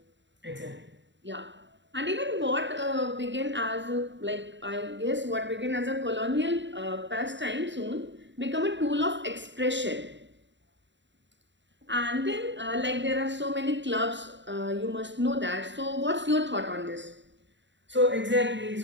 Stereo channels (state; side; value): late; left; 0.53 ms